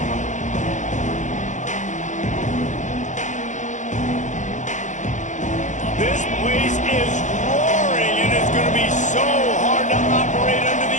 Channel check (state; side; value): late; right; 0.35 ms